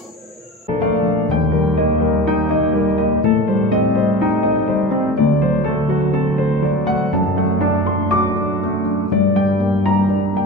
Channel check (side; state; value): both; normal; correlation 0.34